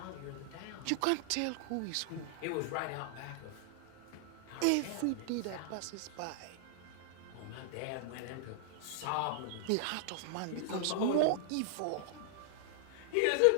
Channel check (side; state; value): both; different; correlation 0.00